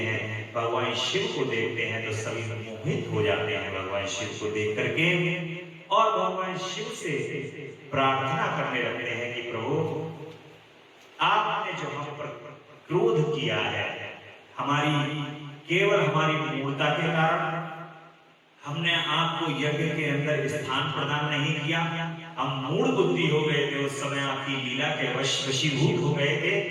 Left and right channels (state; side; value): identical; both; correlation 1.00